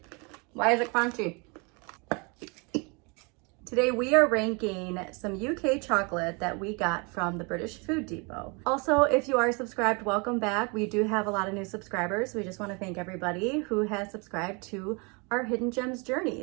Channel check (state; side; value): quieter; left; 31.0 dB